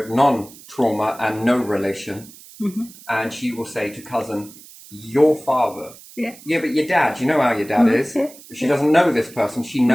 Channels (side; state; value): right; noise; hiss, 20 dB below the sound